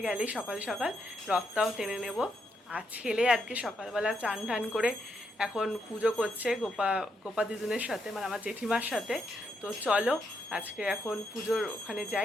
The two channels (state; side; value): normal; both; correlation 0.79